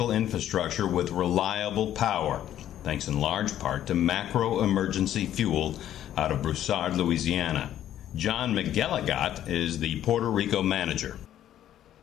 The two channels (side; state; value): right; quieter; 11.6 dB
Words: infrastructure with reliable power, thanks in large part to Macro Emergency Fuel out of Broussard, Louisiana. John McGilligot is the Puerto Rico manager.